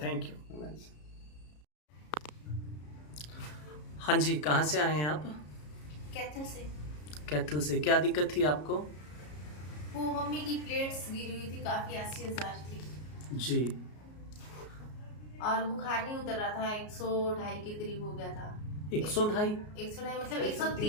thank you. हाँ जी, कहाँ से आए हैं आप? कैथल से। कैथल से। क्या दिक्कत थी आपको? वो मम्मी की प्लेट्स गिरी हुई थी, काफी 80,000 थी जी। और बुखार नहीं उतर रहा था, 102 के करीब हो गया था। 102? 102 मतलब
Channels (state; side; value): late; right; 33 ms